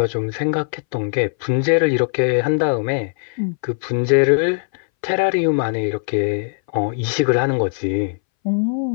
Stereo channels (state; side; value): silent; right; 62 dB below the other